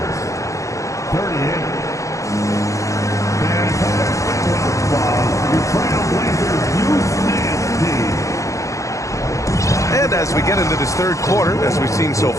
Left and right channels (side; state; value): right; late; 0.15 ms